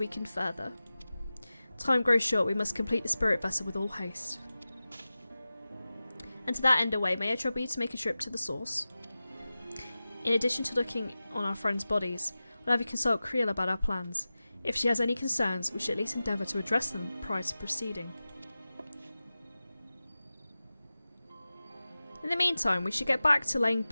further. Time grows short, we must complete the spirit vessel with all haste. And to that end away, may I trouble you to make a trip to the source? In addition to looking on our friends' bodies, we'll have you consult Creel about our plans. If she has any concerns, we should at least endeavour to address them prior to proceeding. In the meantime, we should get back to laying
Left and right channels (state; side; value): inverted; both; correlation -0.95